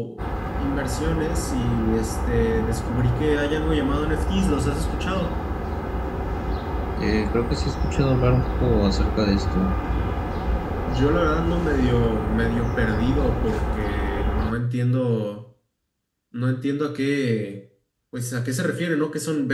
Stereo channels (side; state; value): both; identical; correlation 1.00